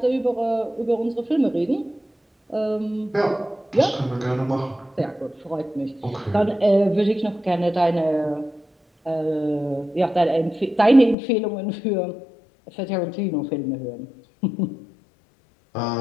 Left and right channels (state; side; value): drops out; right; at 11.2 s